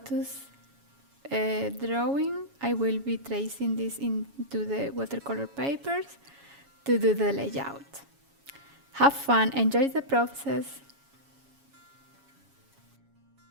drawing. I will be tracing this into the watercolor papers to do the layout. Have fun, enjoy the process.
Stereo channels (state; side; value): late; left; 7.2 ms